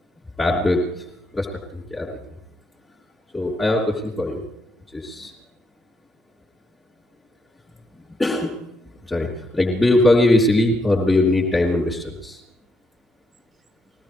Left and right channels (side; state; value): both; normal; correlation 0.78